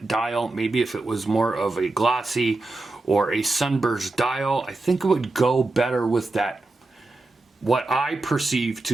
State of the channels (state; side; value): quieter; left; 3.1 dB